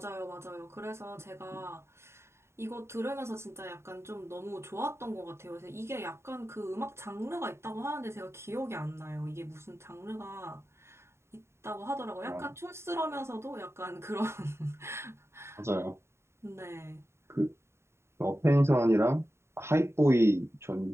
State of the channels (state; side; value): late; left; 0.13 ms